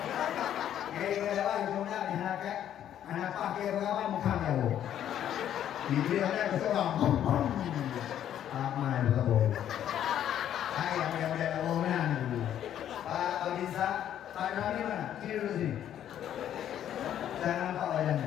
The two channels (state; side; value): quieter; right; 10.6 dB